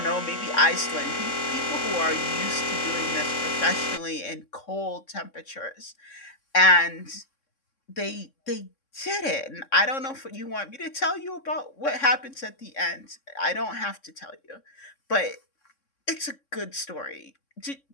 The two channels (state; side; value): late; right; 3.6 ms